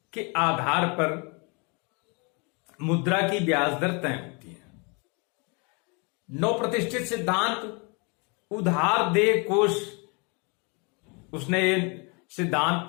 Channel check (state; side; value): quieter; right; 32.2 dB